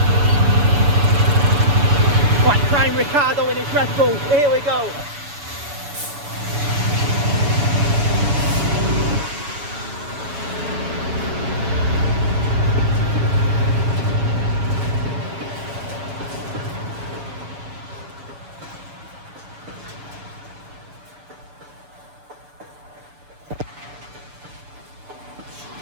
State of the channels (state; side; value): late; left; 6.9 ms